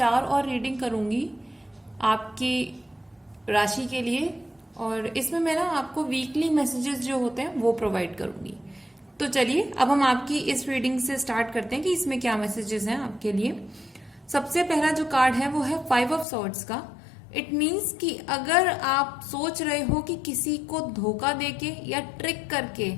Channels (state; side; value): drops out; right; at 16.2 s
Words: और रीडिंग करूंगी आपकी राशि के लिए, और इसमें मैं ना आपको वीकली मैसेजेस जो होते हैं वो प्रोवाइड करूंगी। तो चलिए अब हम आपकी इस रीडिंग से स्टार्ट करते हैं कि इसमें क्या मैसेजेस हैं आपके लिए। सबसे पहला जो कार्ड है वो है 5 ऑफ सॉर्ड्स का। इट मीन्स कि अगर आप सोच रहे हो कि किसी को धोखा देके या ट्रिक करके,